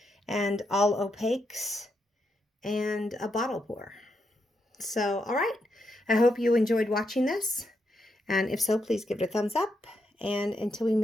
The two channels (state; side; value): normal; both; correlation 0.81